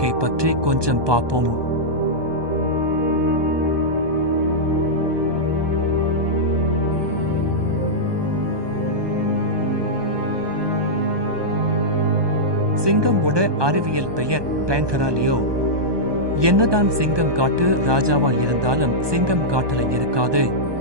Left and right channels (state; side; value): late; left; 1.2 ms